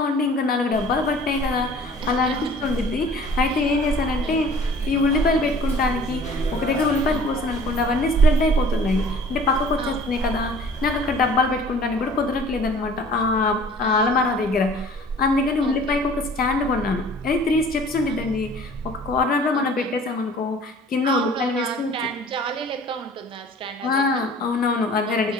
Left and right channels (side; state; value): both; normal; correlation 0.49